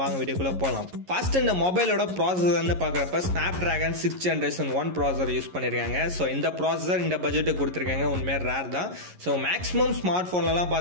வீடியோக்குள்ள போலாம். ஃபர்ஸ்ட் இந்த மொபைலோட ப்ராசஸர்னு பார்க்கறப்ப Snapdragon 6th Generation 1 processor use பண்ணிருக்காங்க. சோ இந்த ப்ராசஸர் இந்த பட்ஜெட்டுக்கு கொடுத்திருக்காங்க. உண்மையா ரேர் தான். சோ மேக்ஸிமம் ஸ்மார்ட் போன்லலாம்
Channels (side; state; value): left; late; 11 ms